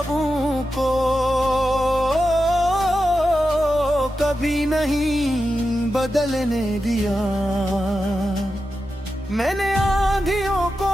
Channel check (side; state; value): both; normal; correlation 0.90